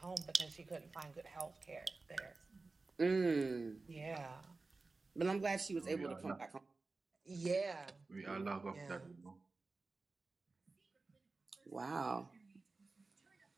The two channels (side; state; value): left; quieter; 3.7 dB